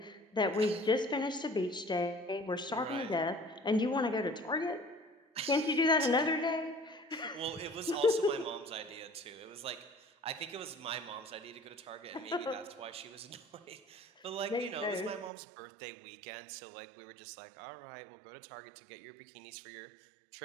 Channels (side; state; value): left; drops out; at 15.3 s